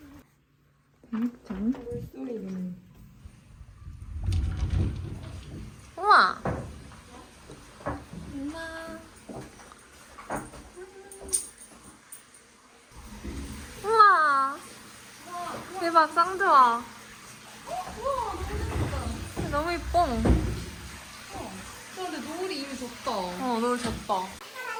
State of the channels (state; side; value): identical; both; correlation 1.00